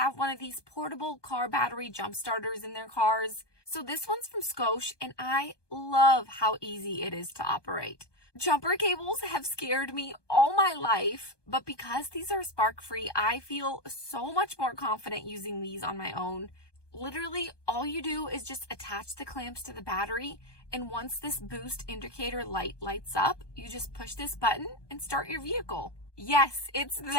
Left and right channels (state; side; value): late; right; 1.2 ms